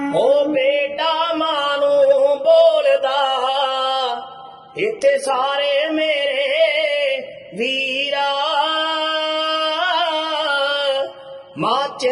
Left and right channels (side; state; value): both; identical; correlation 1.00